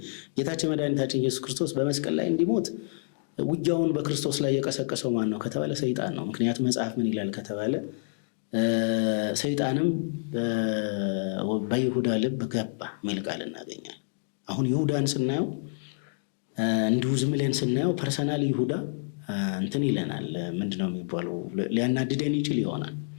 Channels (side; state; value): right; silent; digital silence